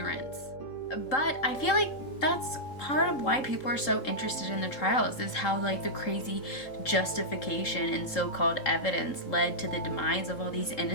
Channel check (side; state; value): right; late; 3.7 ms